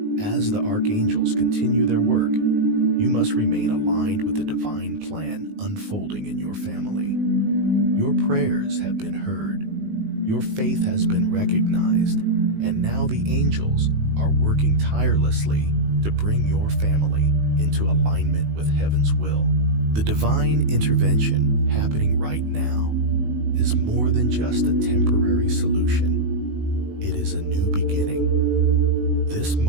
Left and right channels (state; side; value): late; left; 19 ms